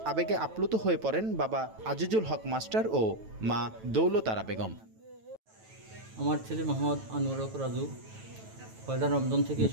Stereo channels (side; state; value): left; late; 9.1 ms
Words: আবেগে আপ্লুত হয়ে পড়েন বাবা আজিজুল হক মাস্টার ও মা দৌলতারা বেগম। আমার ছেলে মোহাম্মদ আনোয়ার হক রাজু পয়লা রমজান থেকে